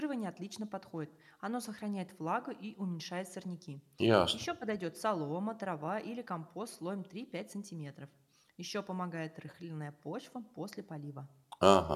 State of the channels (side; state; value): both; identical; correlation 1.00